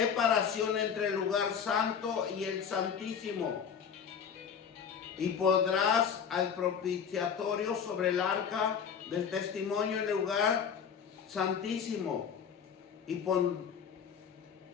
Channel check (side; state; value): right; quieter; 7.2 dB